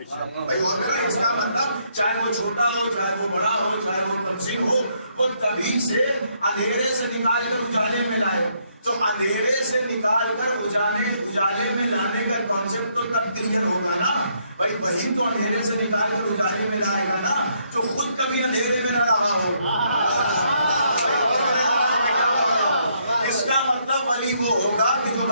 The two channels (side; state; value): both; inverted; correlation -0.72